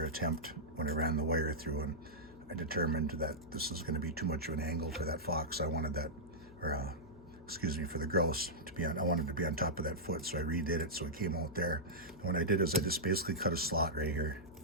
attempt when I ran the wire through, and I determined that this is going to be too much of an angle for that fox. I wanted that, or excuse me, for the grouse to be on, I wanted to be on top of that foot, so I redid it so it came out there. And what I did is I just basically cut a slot right here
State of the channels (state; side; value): noise; left; hum, 21 dB below the sound